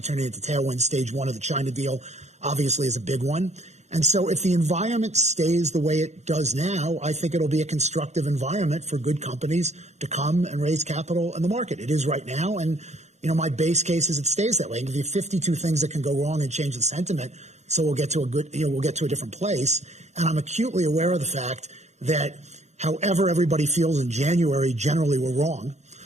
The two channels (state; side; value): late; left; 0.33 ms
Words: turning into tailwinds. Stage one of the China deal obviously is a big one. And so if the environment stays the way it does now, I think it'll be a constructive environment for good companies to come and raise capital in the market. It is right now. And, my base case is it stays that way. And if you have 52 things that can go wrong and change the sentiment, so we'll get to we'll get to a different place. And I'm acutely aware of the fact that however everybody feels in January, generally we're wrong.